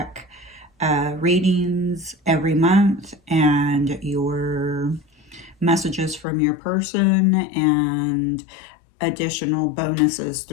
readings every month and your messages from your person and additional bonuses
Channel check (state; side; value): drops out; right; at 6.2 s